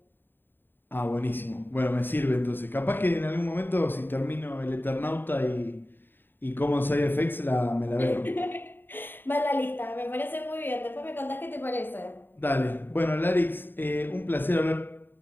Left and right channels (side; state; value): right; late; 0.095 ms